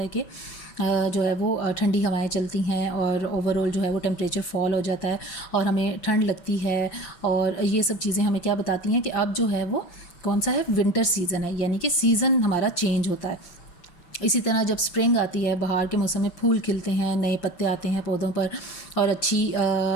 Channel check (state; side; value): late; right; 5.8 ms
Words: कि जो है वो ठंडी हवाएं चलती हैं और ओवरऑल जो है वो टेम्परेचर फॉल हो जाता है और हमें ठंड लगती है. और ये सब चीज़ें हमें क्या बताती हैं कि अब जो है वो कौन सा है, विंटर सीज़न है, यानी कि सीज़न हमारा चेंज होता है. इसी तरह जब स्प्रिंग आती है, बहार के मौसम में फूल खिलते हैं, नए पत्ते आते हैं पौधों पर और अच्छी